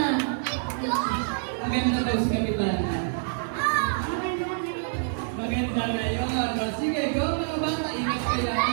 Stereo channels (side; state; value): left; silent; digital silence